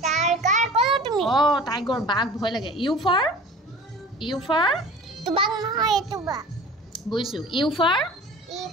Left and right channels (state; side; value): normal; both; correlation 0.41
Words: tiger কলো তুমি টাইগৰ বাঘ ভয় লাগে U for? U for? তুবাক নহয় এটো বা বুজিছো U for? ই